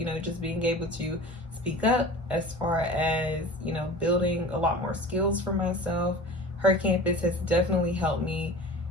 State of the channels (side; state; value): both; normal; correlation 0.38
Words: just being able to speak up, as far as, building a lot more skills for myself, her campus has definitely helped me